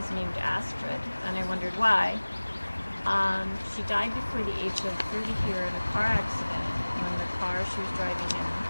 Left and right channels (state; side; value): inverted; both; correlation -1.00